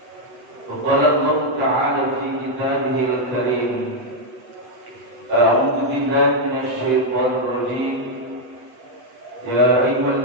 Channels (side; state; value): left; late; 8.0 ms